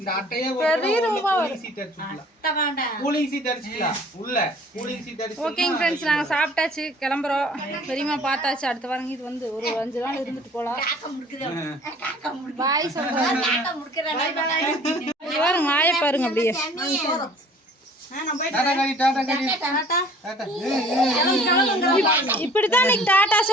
அட்டையே பெரிய ரூபா சீட் அடிச்சுக்கலாம். கூலிங் சீட் அடிச்சுக்கலாம். உள்ள கூலிங் சீட் அடிச்சு. ஓகேங்க ஃப்ரெண்ட்ஸ் நாங்க சாப்பிட்டாச்சு கிளம்புறோம். பெரியம்மா பார்த்தாச்சு. அடுத்த வாரம் இது வந்து ஒரு 5 நாள் இருந்துட்டு போலாம். பாய் சொல்றேன். பாருங்க மாய பாருங்க அப்படியே. இப்படித்தான் இன்னைக்கு டாட்டா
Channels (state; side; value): normal; both; correlation 0.51